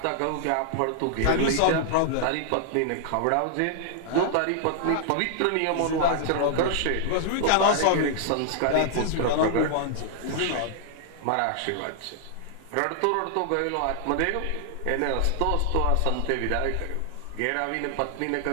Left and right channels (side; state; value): both; different; correlation 0.00